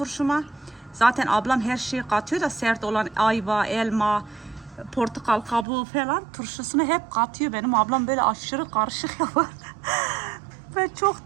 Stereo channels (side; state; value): left; drops out; at 5.7 s